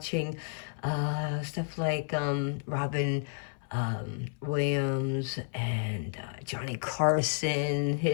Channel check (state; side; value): silent; right; 57 dB below the other